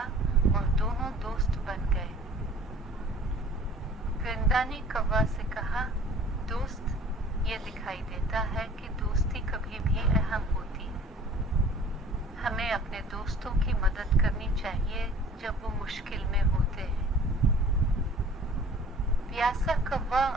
और दोनों दोस्त बन गए। परिंदा ने कौवा से कहा, दोस्त, ये दिखाई देता है कि दोस्ती कभी भी अहम होती है। हमें अपने दोस्तों की मदद करनी चाहिए जब वो मुश्किल में होते हैं। प्यासा कौवा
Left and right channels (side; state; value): both; normal; correlation 0.48